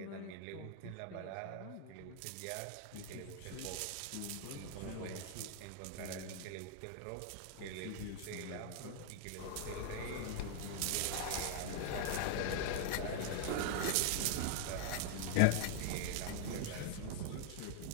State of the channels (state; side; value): different; both; correlation 0.00